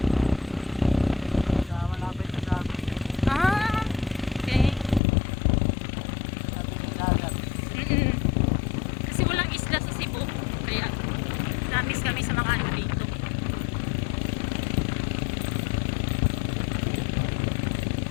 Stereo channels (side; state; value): right; drops out; at 5.0 s